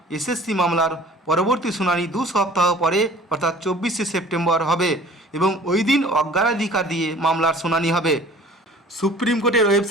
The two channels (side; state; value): both; normal; correlation 0.48